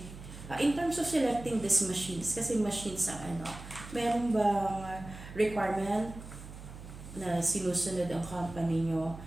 In terms of selecting these machines, kasi machines ang meron bang requirement na sinusunod ang company nyo?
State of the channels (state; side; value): noise; right; hum, 14 dB below the sound